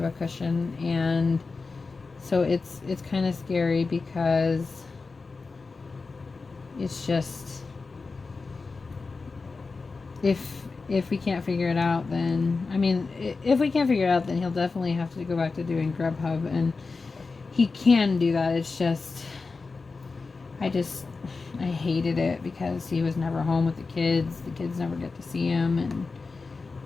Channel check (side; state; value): right; quieter; 4.2 dB